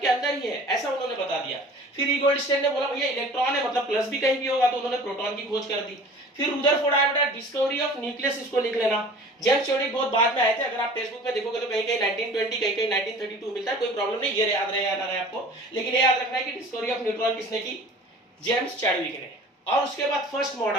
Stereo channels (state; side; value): normal; both; correlation 0.44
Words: के अंदर ही है, ऐसा उन्होंने बता दिया। फिर ई गोल्डस्टेन ने बोला भैया इलेक्ट्रॉन है मतलब प्लस भी कहीं भी होगा, तो उन्होंने प्रोटॉन की खोज कर दी। फिर रुदरफोर्ड आया बेटा, डिस्कवरी ऑफ न्यूक्लियस, इसको लिख लेना। जेम्स चैडविक बहुत बाद में आए थे, अगर आप टेक्स्ट बुक में देखोगे तो कहीं कहीं 1920, कहीं कहीं 1932 मिलता है, कोई प्रॉब्लम नहीं, ये याद रहे आपको। लेकिन ये याद रखना है कि डिस्कवरी ऑफ न्यूट्रॉन किसने की, जेम्स चैडविक ने। और उसके बाद फर्स्ट